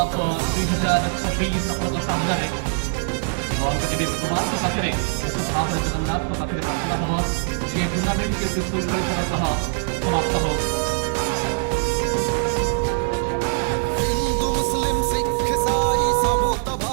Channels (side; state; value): left; silent; digital silence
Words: 2026 ଆପଣଙ୍କ ସାମ୍ନାରେ ଜଗନ୍ନାଥଙ୍କ ପାଖରେ ଜଗନ୍ନାଥଙ୍କ ପାଖରେ ପ୍ରାର୍ଥନା ହେବ ଏ ଟୁର୍ଣ୍ଣାମେଣ୍ଟ ବିଶୃଙ୍ଖଳତାର ସହ ସମାପ୍ତ ହେବ। हिंदू मुस्लिम सिख ईसाई सबू तो